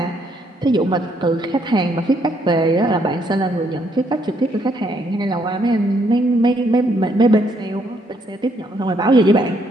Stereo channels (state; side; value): normal; both; correlation 0.71